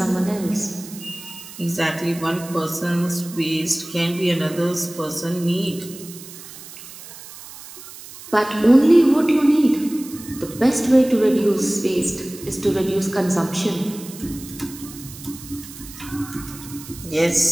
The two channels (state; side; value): noise; right; hiss, 16 dB below the sound